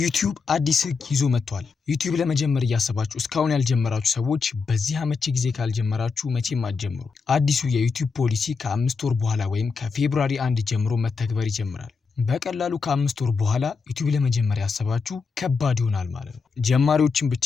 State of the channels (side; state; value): right; quieter; 5.0 dB